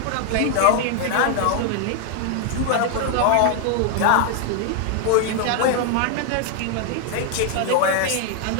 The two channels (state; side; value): different; both; correlation 0.00